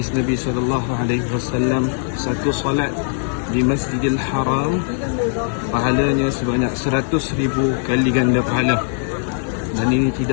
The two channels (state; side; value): silent; right; digital silence